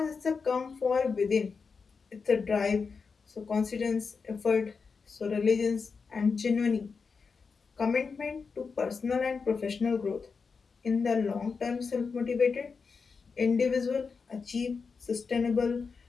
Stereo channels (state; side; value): quieter; right; 5.1 dB